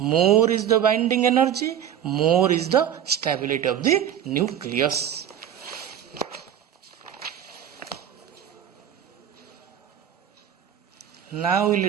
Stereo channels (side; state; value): left; quieter; 9.9 dB